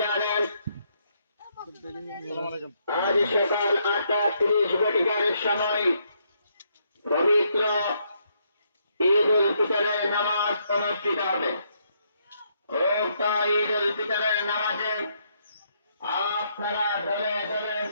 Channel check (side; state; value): both; inverted; correlation -0.74